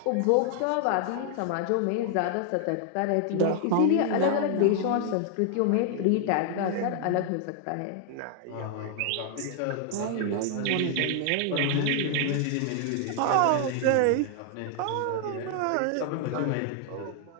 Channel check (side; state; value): both; different; correlation 0.00